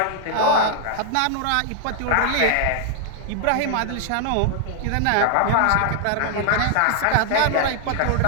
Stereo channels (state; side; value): different; both; correlation 0.00